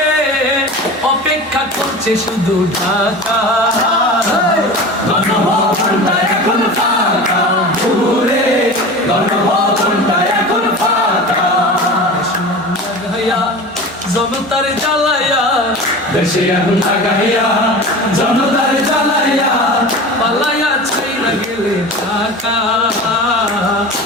অপেক্ষা করছে শুধু ঢাকা, গণভবনটা এখন ফাঁকা। বুবুরে গণভবনটা এখন ফাঁকা। লাগাইয়া জনতার জ্বালাইয়া, দেশে আগুন লাগাইয়া জনতার জ্বালাইয়া পালাইয়া ছাইরা গেলে ঢাকা,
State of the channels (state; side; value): normal; both; correlation 0.33